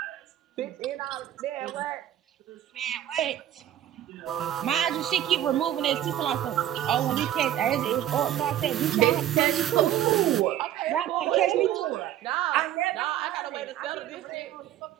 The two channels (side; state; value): left; quieter; 12.0 dB